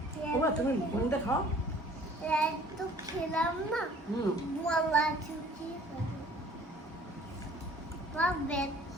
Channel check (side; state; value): both; normal; correlation 0.53